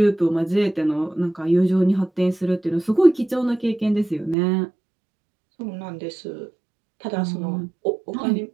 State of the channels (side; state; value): left; drops out; at 4.4 s